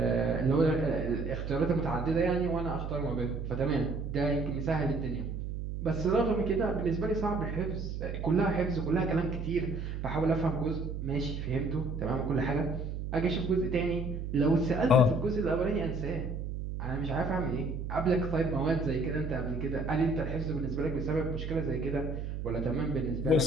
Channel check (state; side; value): noise; right; hum, 5 dB below the sound